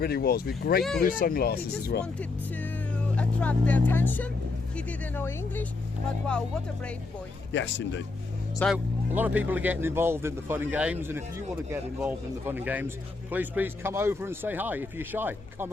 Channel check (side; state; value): right; quieter; 3.6 dB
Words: was, with great blue sunglasses as well. He just wanted to attract their attention. He didn't know English, but wow, what a brave boy. Yes, indeed. So, a lot of people are getting involved in the fun and games, and if you want to get involved in the fun and games, please come over and say hi. If you're shy, come